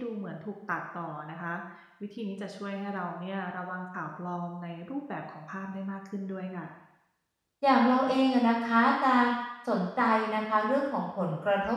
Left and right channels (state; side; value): identical; both; correlation 1.00